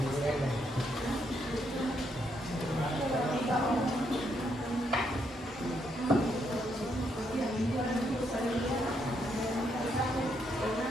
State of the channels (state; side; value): normal; both; correlation 0.76